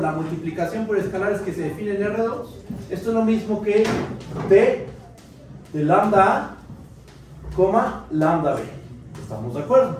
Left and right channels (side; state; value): both; identical; correlation 1.00